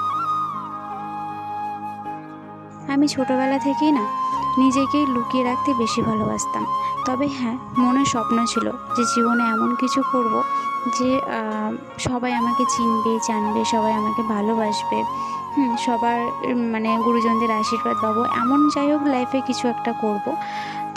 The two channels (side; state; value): both; identical; correlation 1.00